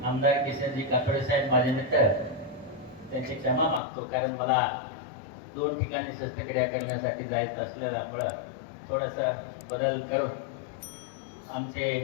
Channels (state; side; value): drops out; right; at 3.8 s